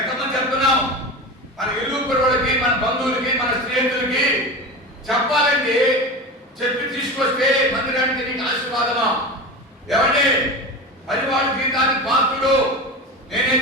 ఎంతమంది చెప్తున్నాం? మన ఇల్లు కుర్రోళ్ళకి, మన బంధువులకి, మన స్నేహితులకి చెప్పాలండి. చెప్పి తీసుకొస్తే మందిరానికి నీకు ఆశీర్వాదమా? ఏమండి, పరివాళ్ళ జీవితానికి పాత్రుడు.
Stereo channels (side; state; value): both; normal; correlation 0.27